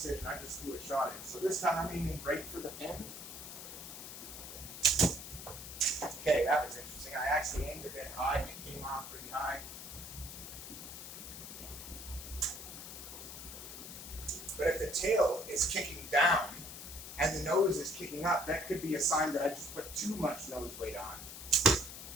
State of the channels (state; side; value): noise; left; hiss, 10 dB below the sound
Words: I just threw a shot in. So this time I'm aiming right for the pin. Okay, that was interesting. I actually aimed a bit high and it came off pretty high. But if the tail is kicking down and the nose is kicking up, that could be a sign that I just put too much nose weight on.